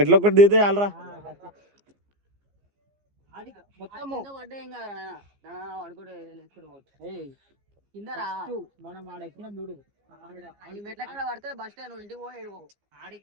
ఒకటి దిగితే చాలరా. మనం ఆడ ఎక్కినాం చూడు, మెట్ల కాడ పడితే బస్ స్టాండ్ ఇంటికి పోయి ఏడుకో.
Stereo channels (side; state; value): left; late; 15 ms